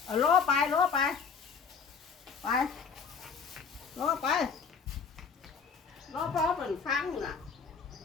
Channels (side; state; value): right; quieter; 5.9 dB